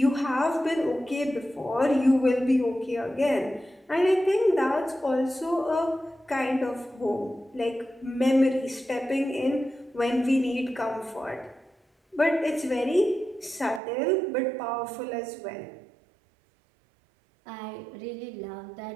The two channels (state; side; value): drops out; left; at 13.8 s